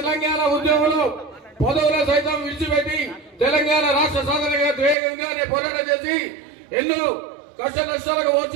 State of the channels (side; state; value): left; drops out; at 5.0 s